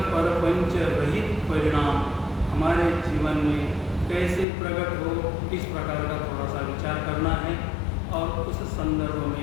परपंच रहित परिणाम हमारे जीवन में कैसे प्रकट हो, इस प्रकार का थोड़ा सा विचार करना है और उस संदर्भ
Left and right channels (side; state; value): right; drops out; at 4.5 s